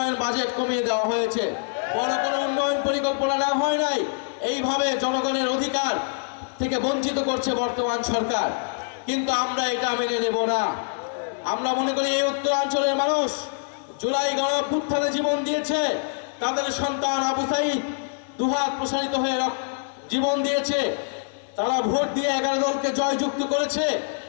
বাজেট কমিয়ে দেওয়া হয়েছে। বড় কোনো উন্নয়ন পরিকল্পনা নেওয়া হয় নাই। এইভাবে জনগণের অধিকার থেকে বঞ্চিত করছে বর্তমান সরকার, কিন্তু আমরা এটা মেনে নেব না। আমরা মনে করি এই উত্তরাঞ্চলের মানুষ জুলাই গণঅভ্যুত্থানে জীবন দিয়েছে, তাদের সন্তান আবু সাঈদ দুহাত প্রসারিত হয়ে জীবন দিয়েছে, তারা ভোট দিয়ে 11 দলকে জয়যুক্ত করেছে।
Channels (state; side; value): silent; right; digital silence